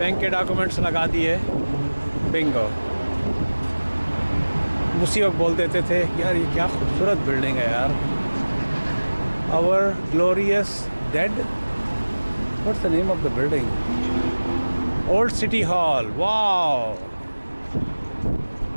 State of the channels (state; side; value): inverted; both; correlation -1.00